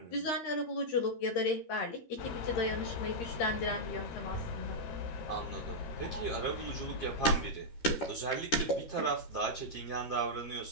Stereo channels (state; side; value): late; right; 13 ms